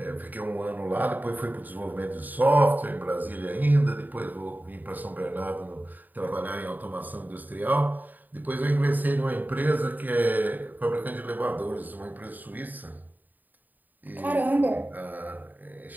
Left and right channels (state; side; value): late; left; 0.087 ms